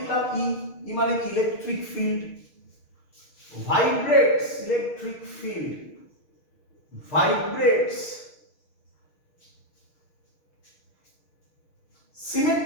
ই মানে কি? Electric field vibrates, electric field vibrates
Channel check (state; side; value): late; right; 6.5 ms